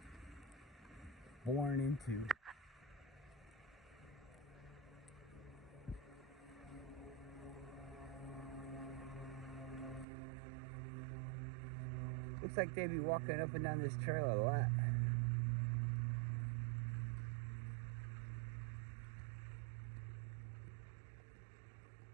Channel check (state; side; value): drops out; left; at 10.1 s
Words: were born into? Looks like they be walking up and down this trail a lot.